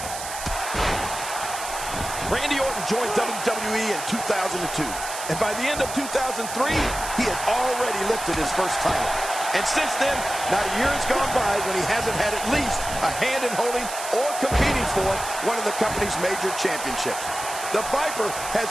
Randy Orton joined WWE in 2002. And by the end of 2003, he had already lifted his first title. And since then, not a year has gone by when he hasn't had at least a hand in holding or competing for one of the company's major championships. The Viper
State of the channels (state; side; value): noise; right; hiss, 8 dB below the sound